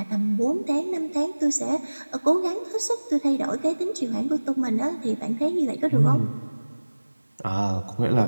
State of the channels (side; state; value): both; inverted; correlation -1.00